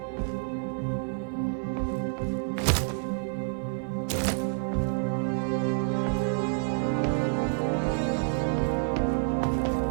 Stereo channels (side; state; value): left; silent; 59 dB below the other